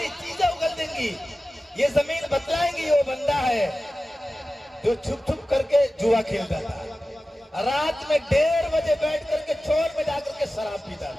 چیزیں اگل دیں گی. یہ زمین بتلائیں گی وہ بندہ ہے جو چھپ چھپ کر کے جوا کھیلتا تھا, رات میں 1:30 بجے بیٹھ کر کے چور میں جا کر کے شراب پیتا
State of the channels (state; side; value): normal; both; correlation 0.95